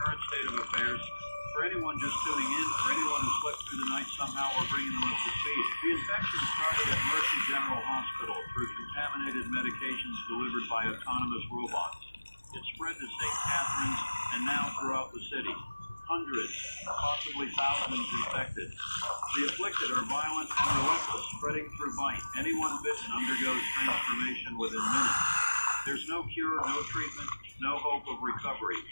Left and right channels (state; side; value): inverted; both; correlation -1.00